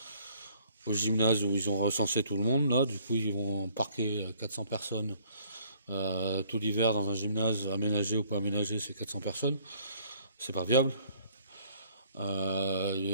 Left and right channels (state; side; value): inverted; both; correlation -0.59